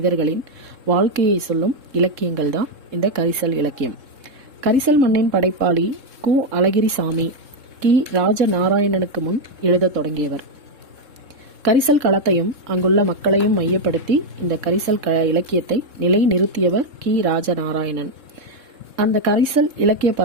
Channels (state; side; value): late; left; 3.7 ms